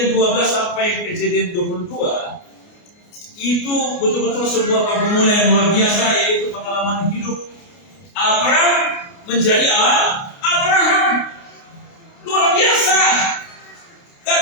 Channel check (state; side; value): late; right; 29 ms